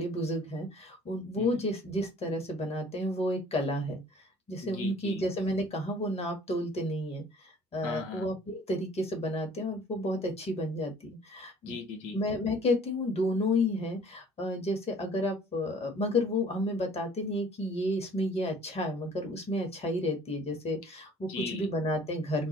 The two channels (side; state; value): both; normal; correlation 0.53